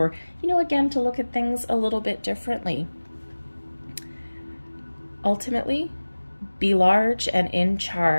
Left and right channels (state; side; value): inverted; both; correlation -1.00